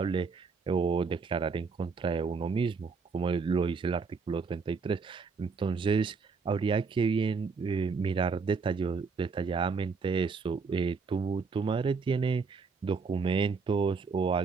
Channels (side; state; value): left; quieter; 4.9 dB